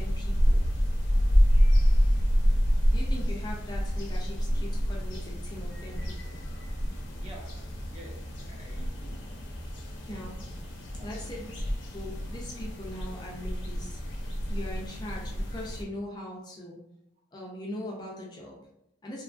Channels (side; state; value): both; normal; correlation 0.98